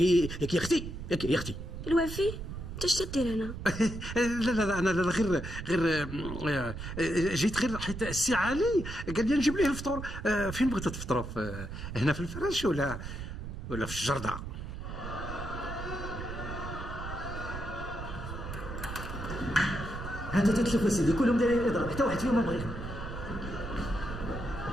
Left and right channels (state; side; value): noise; right; rumble, 8 dB below the sound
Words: اختي يا اختي الوفي انت اش تدير هنا؟ لا انا غير جيت غير حيت السي علي قال لي نجيب ليه الفطور. فين بغيتوا تفطروا؟ هنا في الفراش ولا في الجردة؟ هذا تتشوف سيدي كلهم دايرين الاضراب حتى واحد فيهم ما بغيهم.